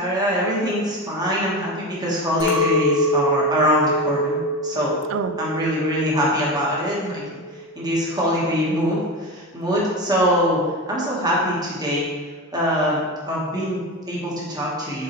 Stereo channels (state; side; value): normal; both; correlation 0.23